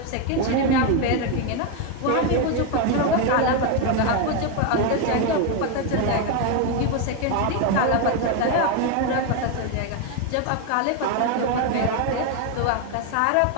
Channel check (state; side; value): different; both; correlation 0.02